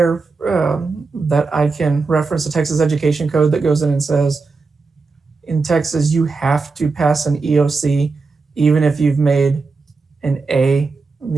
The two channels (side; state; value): left; quieter; 4.2 dB